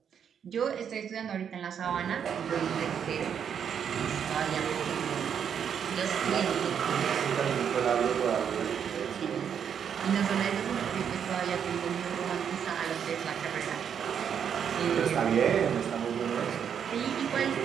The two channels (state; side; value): quieter; left; 8.0 dB